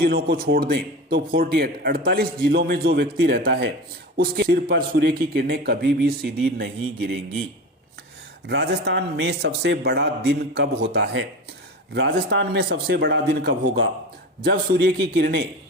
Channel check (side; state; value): both; normal; correlation 0.29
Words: को छोड़ दें तो 48 जिलों में जो व्यक्ति रहता है उसके सिर पर सूर्य की किरणें कभी भी सीधी नहीं गिरेंगी। राजस्थान में सबसे बड़ा दिन कब होता है? राजस्थान में सबसे बड़ा दिन कब होगा? जब सूर्य की